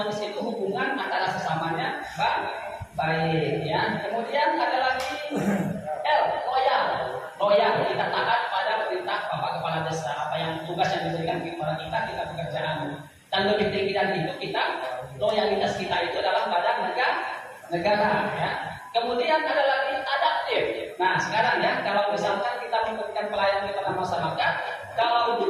itu hubungan antara sesamanya baik ya. Kemudian ada lagi L, loyal. Loyal, kita taat pada perintah Bapak Kepala Desa. Apa yang tugas yang diberikan kepada kita pekerjaan. Dan lebih tinggi dari itu loyalitas kita itu adalah pada negara ya. Kemudian ada lagi adaptif. Nah sekarang ya, kalau misalkan kita memberikan pelayanan kepada masyarakat, kalau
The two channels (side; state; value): both; identical; correlation 1.00